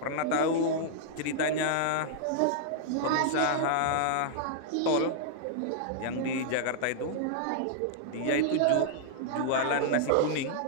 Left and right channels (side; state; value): both; different; correlation -0.01